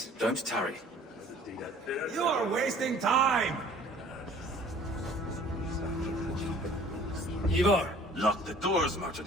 don't tarry. You are wasting time! Ivar, Lock the doors, murder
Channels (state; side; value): normal; both; correlation 0.52